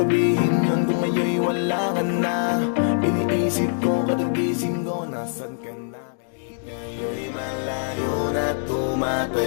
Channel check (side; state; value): right; silent; digital silence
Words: yun kung ngayon'y wala ka na? Iniisip ko kadagising ko, nasan ka na? Ngayon'y malayo na